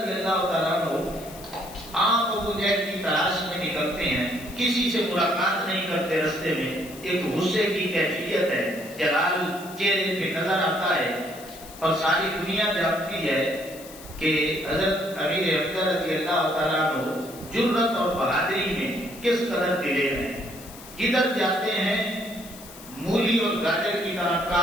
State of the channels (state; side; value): noise; left; hiss, 17 dB below the sound